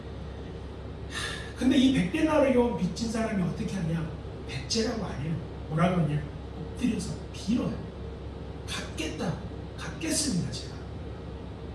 근데 이 100데나리온 빚진 사람이 어떻게 하냐? 백제라고 안 해요. 뭐라고 하냐? 엎드려서 빌어요. 갚겠습니다 제가.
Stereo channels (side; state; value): both; identical; correlation 1.00